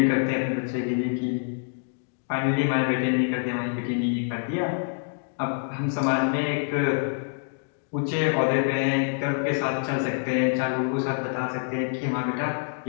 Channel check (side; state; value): right; silent; digital silence